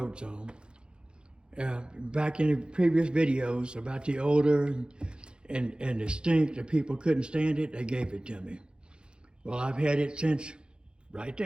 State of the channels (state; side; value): late; left; 0.051 ms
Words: on. Back in the previous videos about the odor and the stink, the people couldn't stand it, they gave it to me. Well, I've had it since right